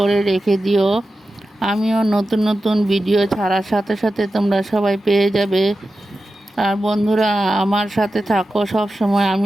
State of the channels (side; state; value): both; normal; correlation 0.92